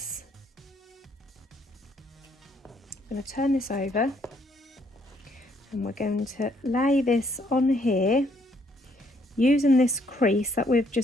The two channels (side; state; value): both; normal; correlation 0.68